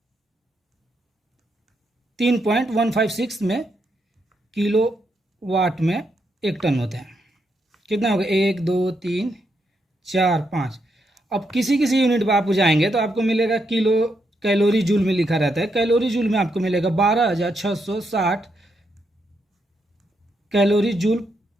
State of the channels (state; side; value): normal; both; correlation 0.80